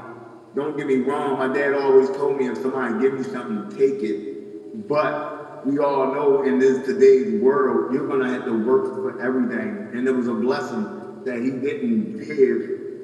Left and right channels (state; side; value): identical; both; correlation 1.00